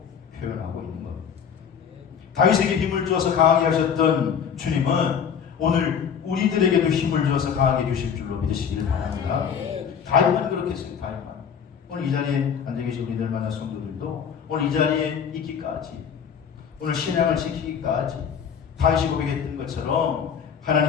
표현하고 있는 겁니다. 다윗에게 힘을 주어서 강하게 하셨던 주님은 오늘 우리들에게도 힘을 주어서 강하게 주실 줄로 믿으시길 바랍니다. 다윗만 그렇게 했어요. 다윗만. 오늘 이 자리에 앉아 계신 우리들 만난 성도들도 오늘 이 자리에 있기까지 오늘 신앙을 지키기까지 다윗이 고백했던 것처럼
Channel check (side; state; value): right; quieter; 7.4 dB